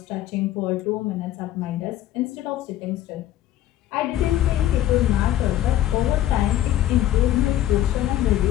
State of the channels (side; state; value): right; quieter; 12.8 dB